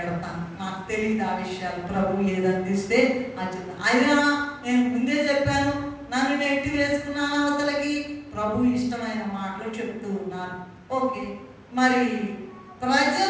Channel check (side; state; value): both; identical; correlation 1.00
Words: నాకు తెలియదు ఆ విషయాలు, ప్రభు ఏది అందిస్తే అది. అయినా నేను ముందే చెప్పాను, నన్ను నెట్టి వేసుకున్నాను అవతలకి. ప్రభు ఇష్టమైన మాటలు చెప్తూ ఉన్నాను. ఓకే, మరి ప్రజల